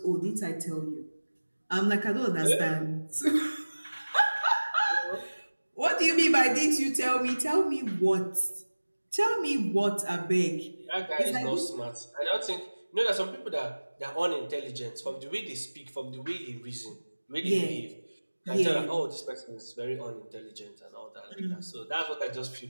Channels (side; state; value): both; inverted; correlation -1.00